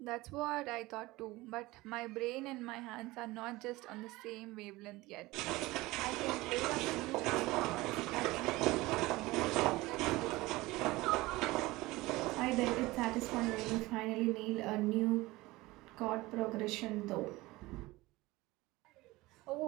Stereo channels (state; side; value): quieter; left; 20.2 dB